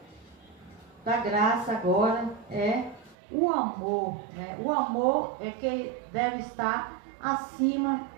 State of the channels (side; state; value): left; drops out; at 3.2 s